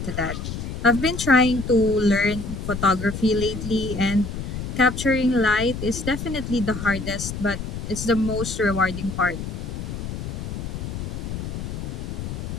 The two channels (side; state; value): left; noise; rumble, 6 dB below the sound